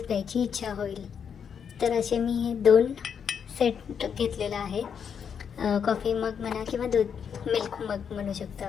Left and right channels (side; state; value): right; quieter; 7.3 dB